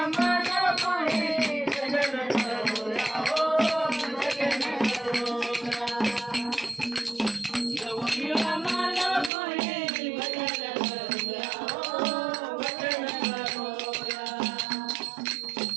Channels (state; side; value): drops out; left; at 9.3 s